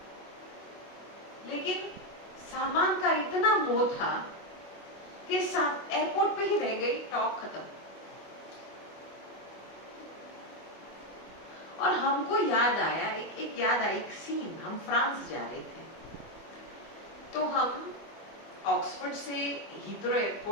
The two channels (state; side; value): late; right; 25 ms